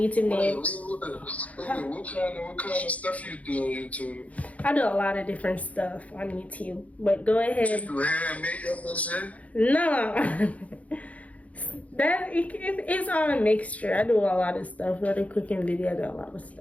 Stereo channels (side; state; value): right; late; 0.068 ms